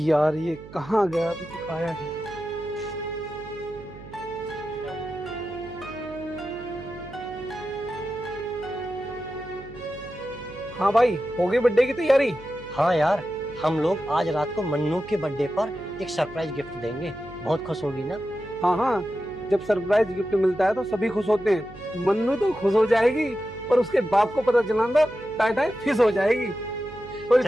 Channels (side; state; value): right; noise; hum, 17 dB below the sound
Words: ये कहाँ गया, अभी तक आया नहीं। हाँ भाई, हो गई बर्थडे की तैयारी? हाँ यार, हम लोग आज रात को मन्नू के बर्थडे पर एक सरप्राइज गिफ्ट देंगे। बहुत खुश होगी ना? हाँ हाँ, जब सरप्राइज गिफ्ट मिलता है तो सभी खुश होते हैं। मन्नू तो खुश हो जाएगी और उसके बाप को पता चला तो टाटा फिश हो जाएगी।